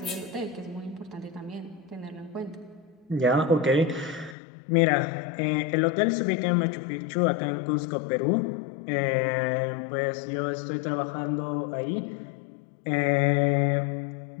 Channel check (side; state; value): right; drops out; at 4.4 s